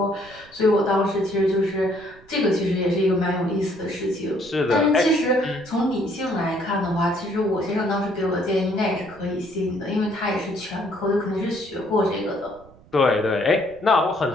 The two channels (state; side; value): noise; right; rumble, 24 dB below the sound